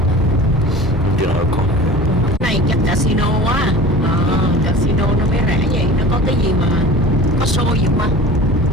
You know, Này chắc casino á. Casino nó mới rẻ vậy. Nó có cái gì mà có show gì không?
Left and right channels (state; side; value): normal; both; correlation 0.40